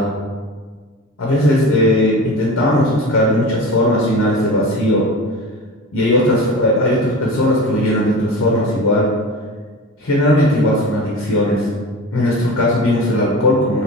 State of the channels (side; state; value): both; normal; correlation 0.32